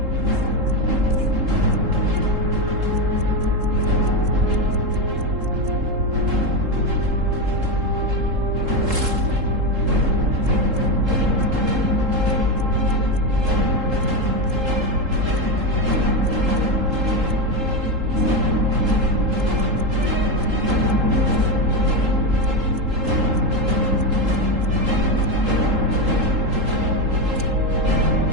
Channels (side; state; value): left; late; 3.7 ms